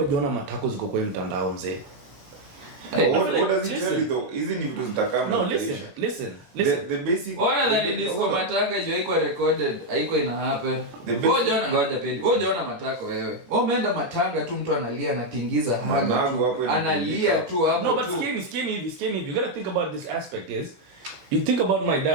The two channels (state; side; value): late; left; 19 ms